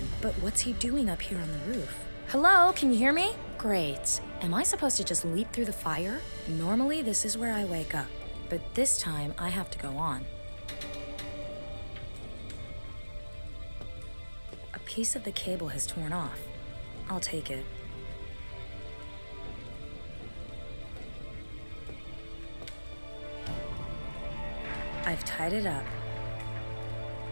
but what's he doing up here on the roof? Hello, can you hear me? Great. Am I supposed to just leap through the fire? Normally, this is where I wake up, but this time I have to go on. A piece of the cable has torn off. I'll take it. I've tied it up.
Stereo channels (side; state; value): both; inverted; correlation -1.00